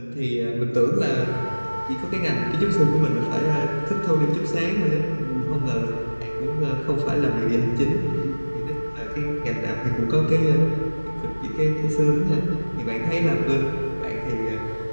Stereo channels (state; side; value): inverted; both; correlation -1.00